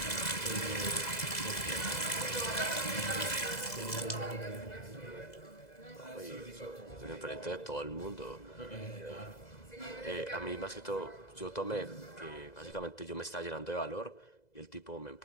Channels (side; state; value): right; late; 2.0 ms